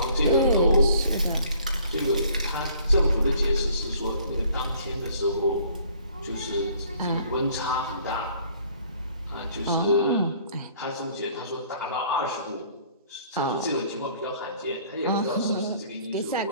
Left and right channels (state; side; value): inverted; both; correlation -0.57